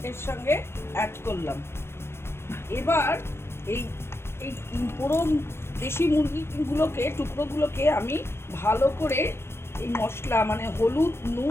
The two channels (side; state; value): right; late; 0.12 ms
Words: এর সঙ্গে অ্যাড করলাম। এবার এই এই পুরো দেশি মুরগিগুলোকে টুকরোগুলোকে আমি ভালো করে এই মশলা মানে হলুদ,